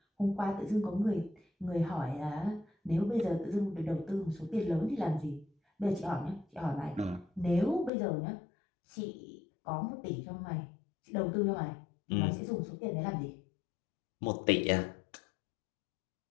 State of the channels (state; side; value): drops out; right; at 7.9 s